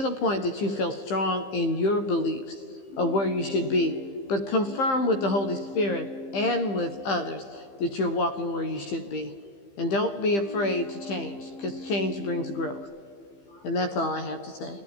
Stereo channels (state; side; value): late; right; 15 ms